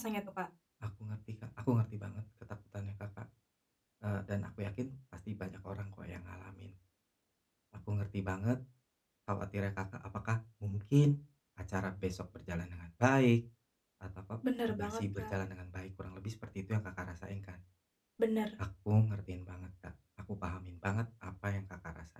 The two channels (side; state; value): both; identical; correlation 1.00